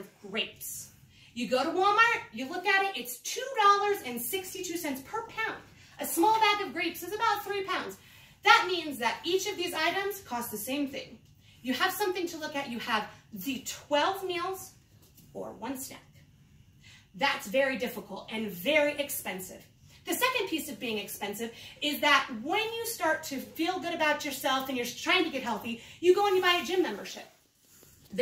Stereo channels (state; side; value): identical; both; correlation 1.00